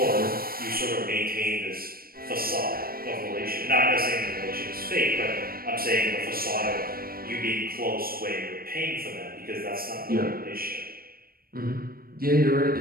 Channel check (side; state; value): left; late; 0.43 ms